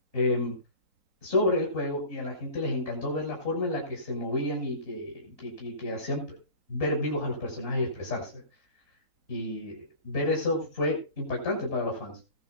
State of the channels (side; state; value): left; late; 3.9 ms